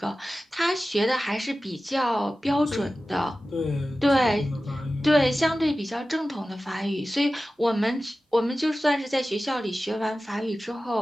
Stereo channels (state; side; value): normal; both; correlation 0.95